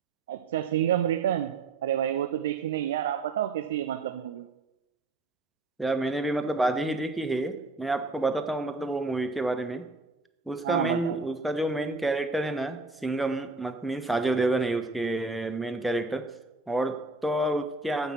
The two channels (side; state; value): left; quieter; 3.5 dB